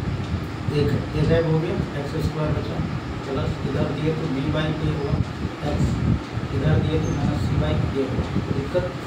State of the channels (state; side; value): identical; both; correlation 1.00